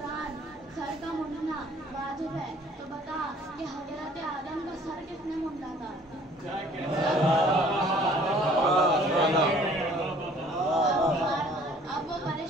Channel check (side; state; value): both; normal; correlation 0.55